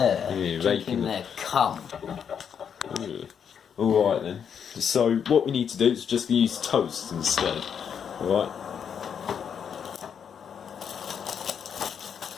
raping drinking their cum. Alright then. So what we need to do is just use toast instead. Alright?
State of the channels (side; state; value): right; quieter; 7.6 dB